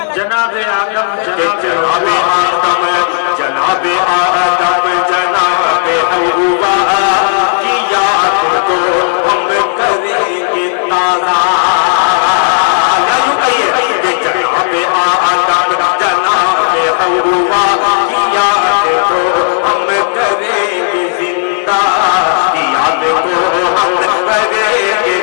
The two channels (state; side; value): silent; right; digital silence